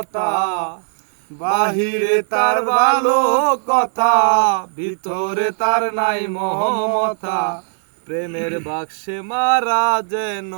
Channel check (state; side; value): silent; left; 67 dB below the other